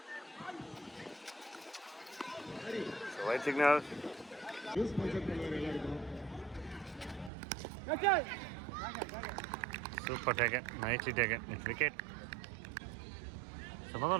So white signal. Super taken. Nicely taken. It's wicket. So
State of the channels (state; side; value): drops out; left; at 7.3 s